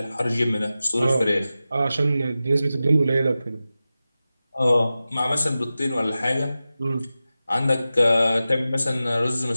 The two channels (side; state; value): both; inverted; correlation -0.94